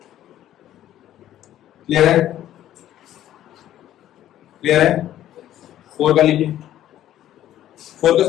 Clear है? Clear है? 4 का लीजिए, 4 का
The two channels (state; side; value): quieter; right; 12.4 dB